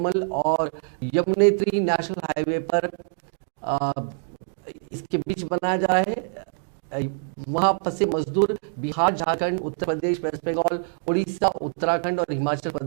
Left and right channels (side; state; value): left; silent; digital silence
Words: और यमुनेत्री नेशनल हाईवे पर इसके बीच बनाया जा रहा है। वहां फंसे मजदूर बिहार, झारखंड, उत्तर प्रदेश, वेस्ट बंगाल, उड़ीसा, उत्तराखंड और हिमाचल